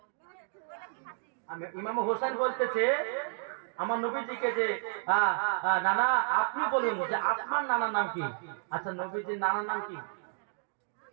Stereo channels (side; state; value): left; silent; digital silence